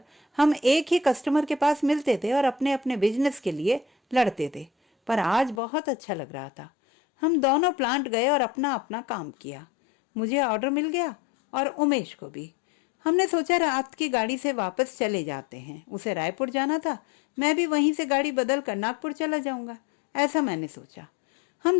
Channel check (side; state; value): right; drops out; at 5.6 s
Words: हम एक ही कस्टमर के पास मिलते थे और अपने अपने बिजनेस के लिए लड़ते थे। पर आज बहुत अच्छा लग रहा था। हम दोनों प्लांट गए और अपना अपना काम किया। मुझे ऑर्डर मिल गया और उमेश को भी। हमने सोचा रात की गाड़ी से वापस चले जाते हैं। उसे रायपुर जाना था, मैं भी वहीं से गाड़ी बदल कर नागपुर चला जाऊंगा, ऐसा मैंने सोचा।